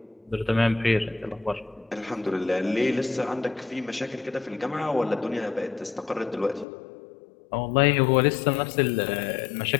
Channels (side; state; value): right; drops out; at 6.7 s